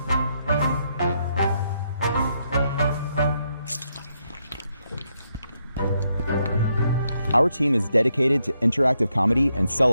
Our team is dedicated to interactive comedy and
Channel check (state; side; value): inverted; both; correlation -0.79